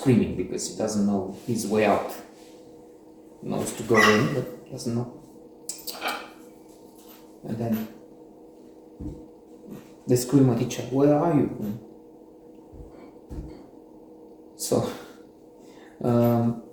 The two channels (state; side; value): identical; both; correlation 1.00